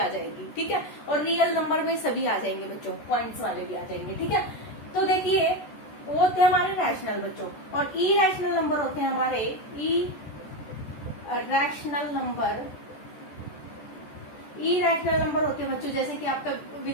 जाएगी, ठीक है। और रियल नंबर में सभी आ जाएंगे बच्चों, पॉइंट्स वाले भी आ जाएंगे, ठीक है। तो देखिए, वो होते हैं हमारे रैशनल बच्चों, और इरेशनल नंबर होते हैं हमारे इरेशनल नंबर। इरेशनल नंबर होते हैं बच्चों जैसे कि आपका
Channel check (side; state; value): right; late; 14 ms